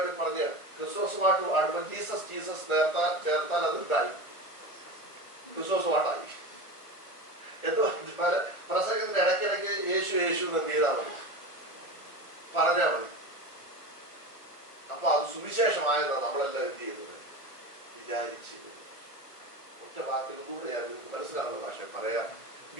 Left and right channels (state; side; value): late; right; 1.4 ms